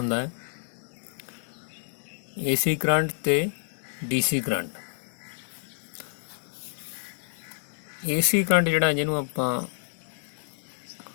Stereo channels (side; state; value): right; silent; digital silence